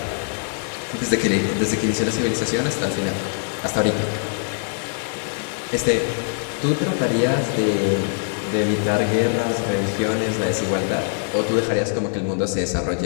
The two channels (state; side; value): silent; right; digital silence